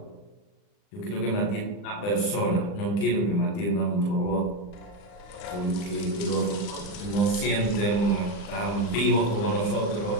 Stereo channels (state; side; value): late; right; 39 ms